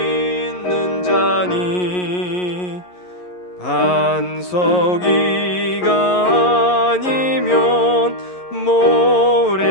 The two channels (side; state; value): right; late; 11 ms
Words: 자니 반석 위가 아니면